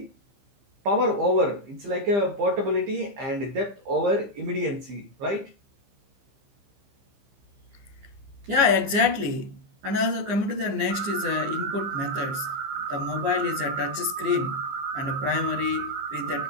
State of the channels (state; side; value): late; left; 15 ms